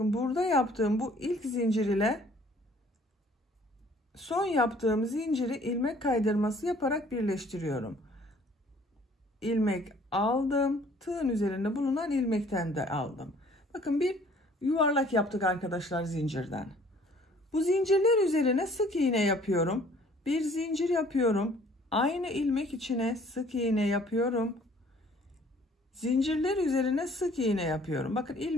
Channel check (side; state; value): both; normal; correlation 0.56